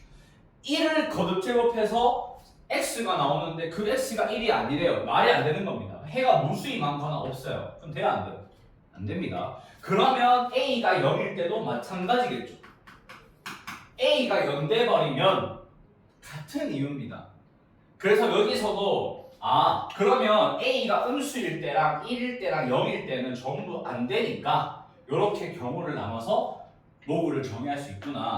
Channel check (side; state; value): both; identical; correlation 1.00